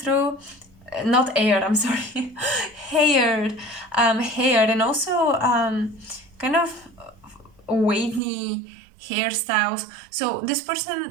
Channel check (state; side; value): drops out; left; at 8.2 s